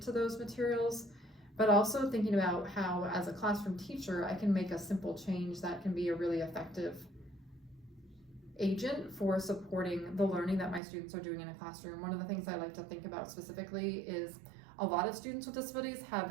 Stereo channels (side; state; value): left; drops out; at 10.8 s